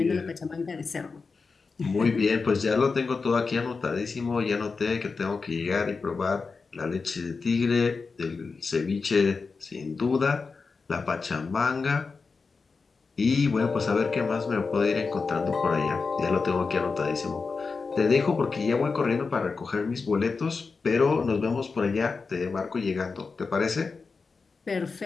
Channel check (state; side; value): quieter; right; 4.6 dB